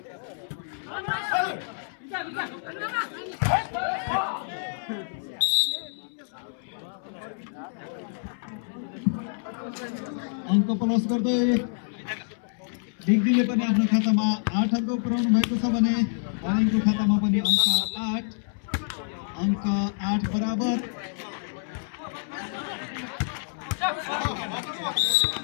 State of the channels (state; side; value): silent; right; 60 dB below the other